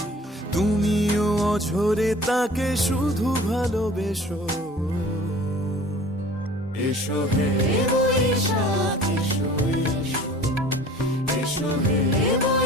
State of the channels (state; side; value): normal; both; correlation 0.46